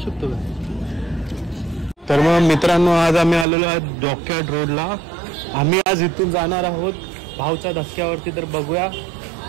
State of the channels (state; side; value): drops out; left; at 3.5 s